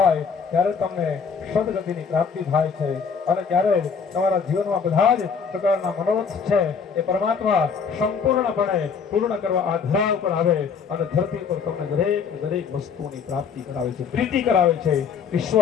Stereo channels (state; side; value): quieter; right; 6.1 dB